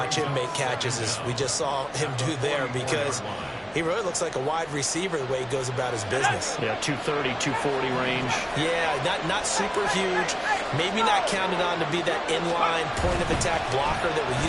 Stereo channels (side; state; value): both; identical; correlation 1.00